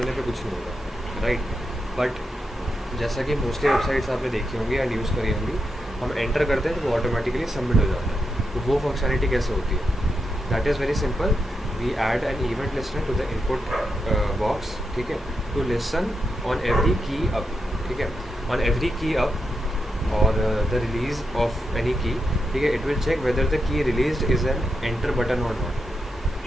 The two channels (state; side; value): normal; both; correlation 0.85